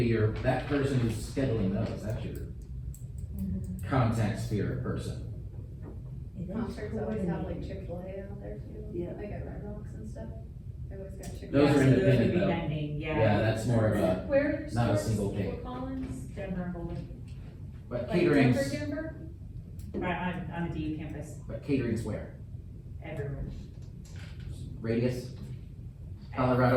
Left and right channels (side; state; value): both; identical; correlation 1.00